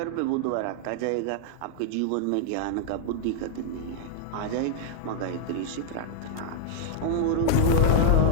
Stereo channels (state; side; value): different; both; correlation -0.01